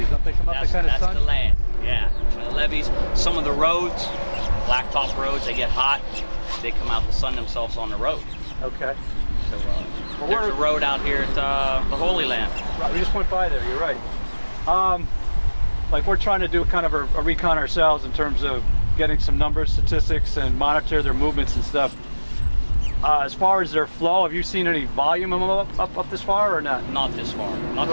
Don't they come up the kind of sun? That's the land, yeah. The levees, some of the roads, blacktop roads, they get hot, they come out to sun themselves on the road. Okay. So there's a road out here at the Holy Land. Right, we just went by there, you're right. Like we're trying to do kind of a recon ourselves in terms of getting some numbers, statistics, and monitor their movements and stuff. As far as their flow, have you seen any volume up this far or not? Not this far. Not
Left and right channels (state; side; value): inverted; both; correlation -1.00